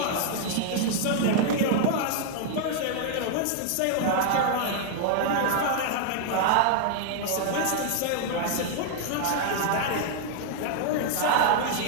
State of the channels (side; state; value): both; different; correlation 0.00